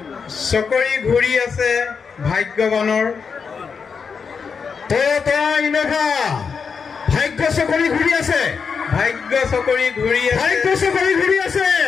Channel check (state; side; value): quieter; right; 5.8 dB